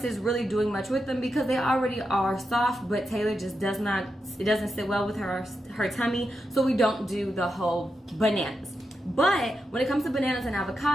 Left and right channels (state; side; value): normal; both; correlation 0.86